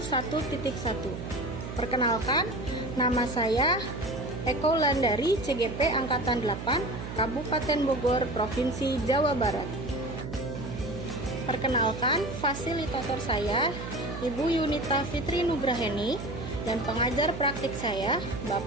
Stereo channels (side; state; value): right; noise; hum, 8 dB below the sound